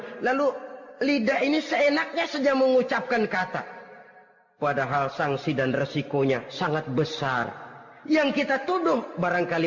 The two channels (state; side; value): identical; both; correlation 1.00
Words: lalu lidah ini seenaknya saja mengucapkan kata. Padahal sanksi dan resikonya sangat besar. Yang kita tuduh